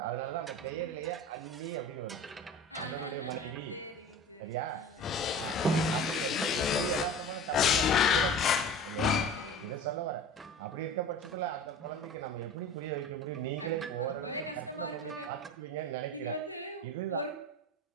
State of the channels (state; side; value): normal; both; correlation 0.36